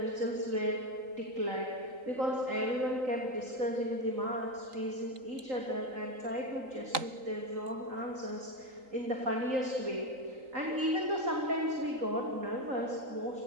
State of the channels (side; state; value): left; late; 3.9 ms